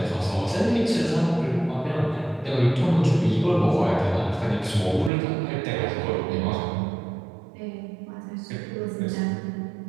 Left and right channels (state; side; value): drops out; left; at 5.1 s